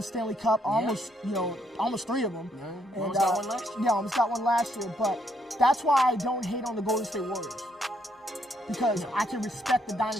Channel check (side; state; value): both; normal; correlation 0.73